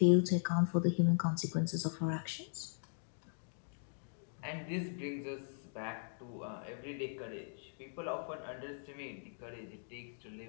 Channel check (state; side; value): silent; right; digital silence